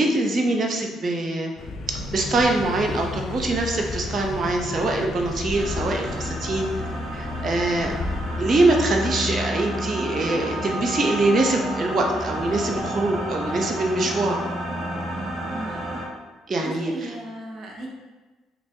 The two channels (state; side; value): normal; both; correlation 0.78